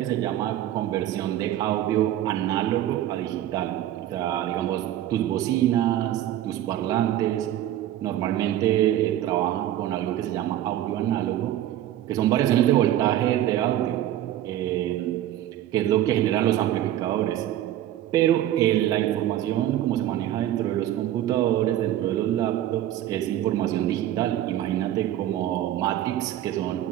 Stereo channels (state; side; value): quieter; left; 12.5 dB